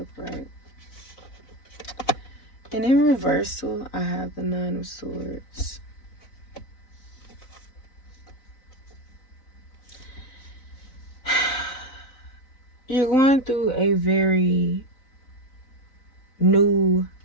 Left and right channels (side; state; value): right; late; 3.9 ms